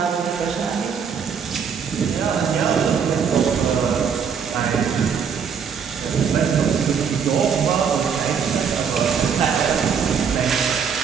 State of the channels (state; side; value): quieter; left; 6.7 dB